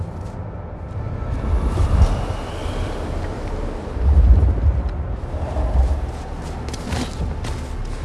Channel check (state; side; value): identical; both; correlation 1.00